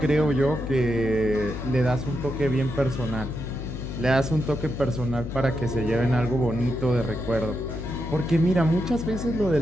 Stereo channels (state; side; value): noise; left; hum, 7 dB below the sound